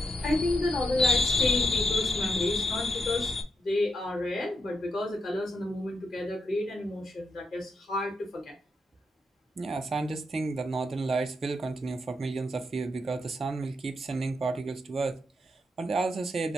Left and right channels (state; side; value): normal; both; correlation 0.82